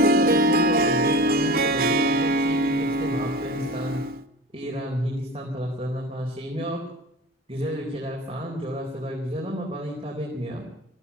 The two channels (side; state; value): both; normal; correlation 0.35